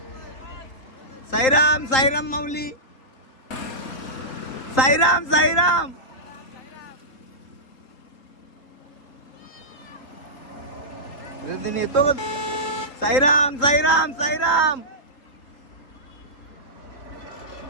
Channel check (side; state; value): right; late; 3.8 ms